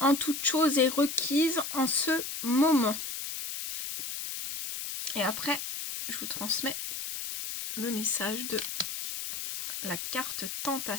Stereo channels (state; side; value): noise; left; hiss, 5 dB below the sound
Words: toute chose est requise en ce moment. Et après, je vous transmets le message de la carte